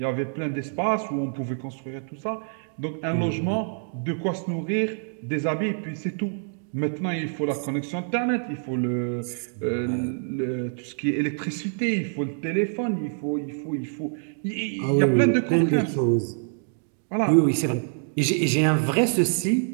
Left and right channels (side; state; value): left; silent; digital silence